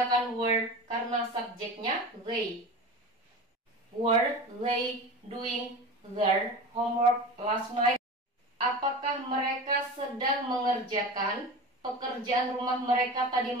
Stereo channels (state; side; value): normal; both; correlation 0.31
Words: were karena subjeknya they. Were they doing their homework last night? Apakah mereka sedang mengerjakan pekerjaan rumah mereka tadi